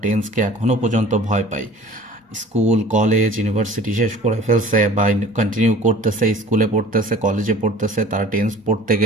টেন্সকে এখনো পর্যন্ত ভয় পায়। স্কুল কলেজ ইউনিভার্সিটি শেষ করে ফেলছে বা কন্টিনিউ করতেছে, স্কুলে পড়তেছে কলেজে পড়তেছে, তারা টেন্স পড়তে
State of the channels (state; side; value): normal; both; correlation 0.46